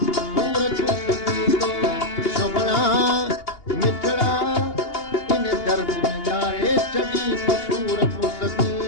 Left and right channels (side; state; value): right; late; 2.8 ms